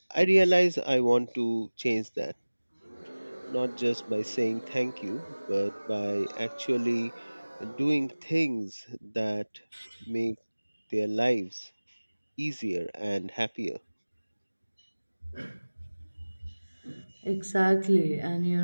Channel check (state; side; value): inverted; both; correlation -1.00